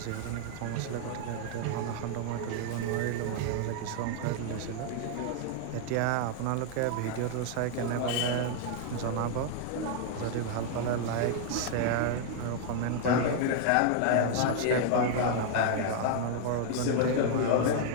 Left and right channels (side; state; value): both; different; correlation 0.00